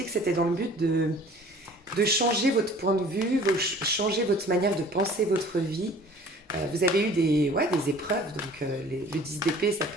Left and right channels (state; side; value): normal; both; correlation 0.49